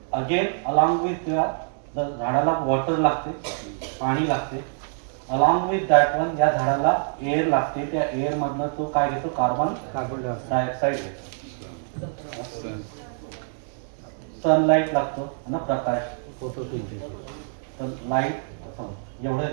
अगेन अलॉंग विथ झाडाला वॉटर लागते, पाणी लागते. अलॉंग विथ दॅट वन या झाडाला एअर लागते. त्या एअर मधनं तो काय घेतो, कार्बन डायऑक्साईड घेतो. सनलाईट लागतो ना, प्रकाश, तर लाईट एवढं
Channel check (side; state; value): left; silent; digital silence